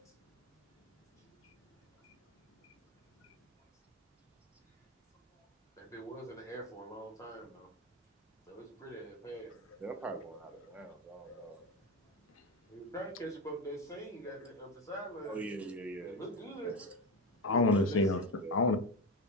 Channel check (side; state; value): both; normal; correlation 0.17